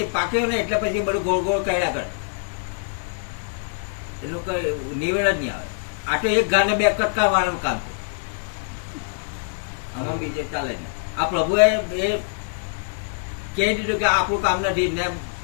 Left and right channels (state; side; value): silent; right; 63 dB below the other